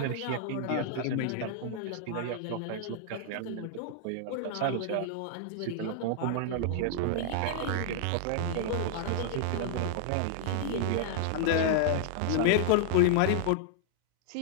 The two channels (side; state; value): both; different; correlation -0.01